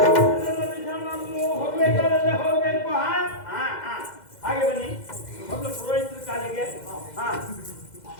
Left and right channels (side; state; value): right; late; 2.1 ms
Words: ಹೋಗ್ಬೇಕಾದ್ರೆ ಹೋಗ್ಬೇಕು. ಹಾಗೆ ಬನ್ನಿ ಮೊದಲು ಪುರೋಹಿತರ ಕಾಲಿಗೆ.